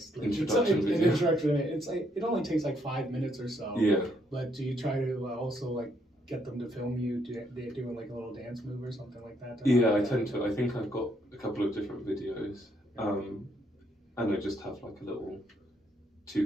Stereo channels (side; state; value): both; normal; correlation 0.72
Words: like introduction. It's like it only takes like 5 minutes or so. Yeah. But do you try to also like get them to film you doing like a little dance move or something like that? Yeah, I tend to. I think I've got a couple of different videos, and I just have like a little